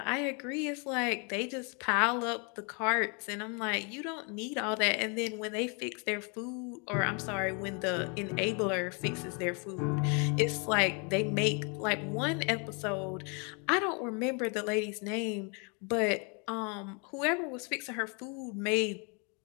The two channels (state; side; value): quieter; right; 35.0 dB